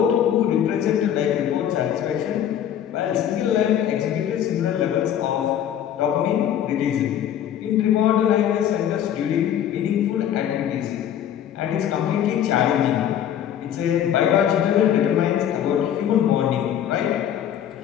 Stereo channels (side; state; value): right; quieter; 10.1 dB